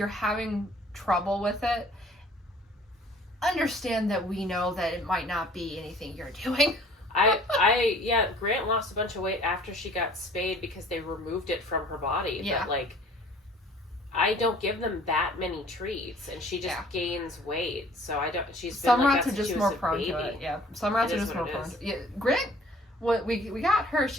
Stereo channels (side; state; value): both; normal; correlation 0.53